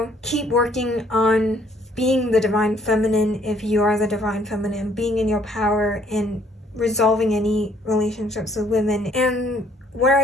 keep working on being the divine feminine if you are the divine feminine, being in your power and resolving any relationships with women. And where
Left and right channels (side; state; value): both; normal; correlation 0.63